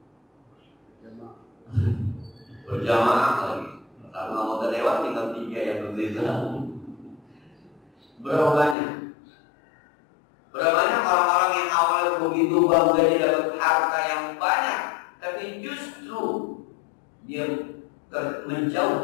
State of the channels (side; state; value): right; drops out; at 8.8 s